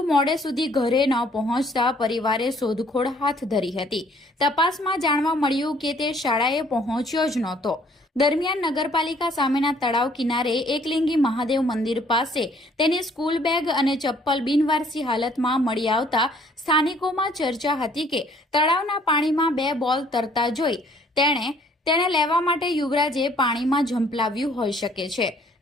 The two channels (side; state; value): both; normal; correlation 0.60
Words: મોડે સુધી ઘરે ન પહોંચતા પરિવારે શોધખોળ હાથ ધરી હતી। તપાસમાં જાણવા મળ્યું કે તે શાળાએ પહોંચ્યો જ નહોતો। દરમિયાન નગરપાલિકા સામેના તળાવ કિનારે એકલિંગી મહાદેવ મંદિર પાસે તેની સ્કૂલ બેગ અને ચપ્પલ બિનવારસી હાલતમાં મળી આવતા સ્થાનિકોમાં ચર્ચા હતી કે તળાવના પાણીમાં 2 બોલ તરતા જોઈ તેને લેવા માટે યુવરાજે પાણીમાં ઝંપલાવ્યું હોઈ શકે છે।